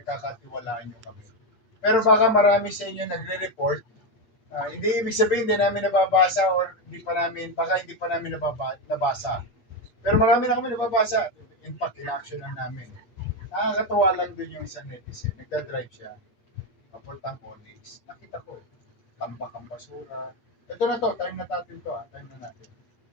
nyo kami. Pero baka marami sa inyo nagre-report. Hindi ibig sabihin hindi namin nababasa or baka hindi pa namin nabasa. Pero marami na kami nababasa. In fact, in-action lang namin. Nakakatuwa lang dun yung sa netizen. Nagda-drive siya. Papuntang Onyx. Nakita ko eh. Tambak ang basura. Ito na to, time na natin to ha. Time na natin.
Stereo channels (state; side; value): late; right; 8.5 ms